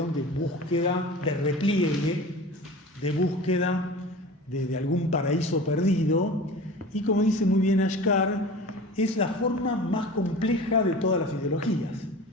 de búsqueda, de repliegue, de búsqueda de algún paraíso perdido, y como dice muy bien Ashkar, es la forma más compleja de todas las ideologías,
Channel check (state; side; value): normal; both; correlation 0.37